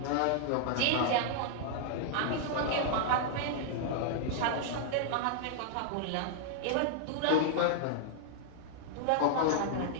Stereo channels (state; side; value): different; both; correlation -0.01